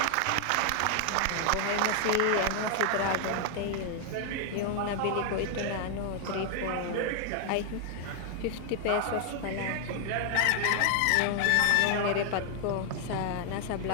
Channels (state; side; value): different; both; correlation 0.00